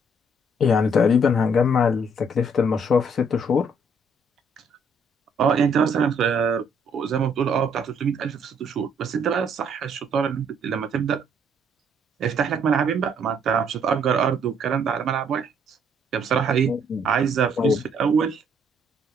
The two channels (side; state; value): both; normal; correlation 0.66